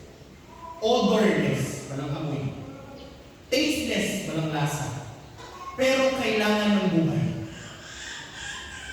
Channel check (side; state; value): both; identical; correlation 1.00